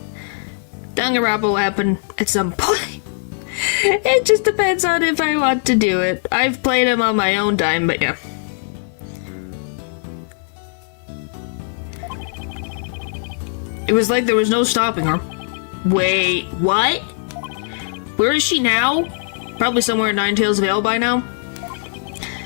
Danganronpa will happen at some point. It just depends on if I want to do it. I've played him on my own time, but yeah. It was like there was no stopping her. Wait, what? Where is she now? Probably somewhere in Nine Tails Vale by now.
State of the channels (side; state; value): right; silent; 56 dB below the other